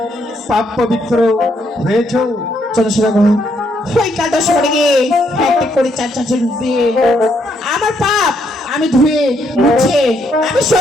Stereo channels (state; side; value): normal; both; correlation 0.74